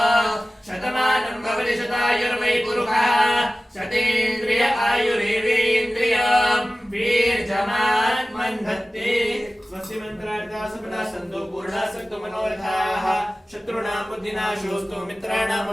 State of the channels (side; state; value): both; normal; correlation 0.97